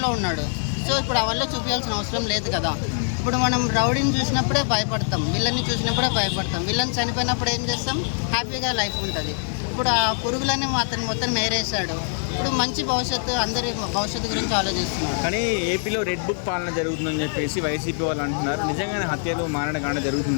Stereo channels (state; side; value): silent; right; 62 dB below the other